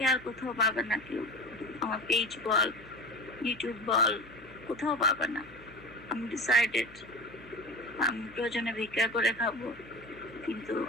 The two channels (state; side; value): noise; left; hum, 22 dB below the sound